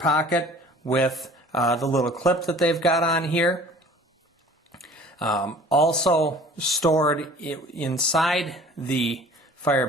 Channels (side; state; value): both; normal; correlation 0.48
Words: with the little clip that they've got on here. Also stored inside the fire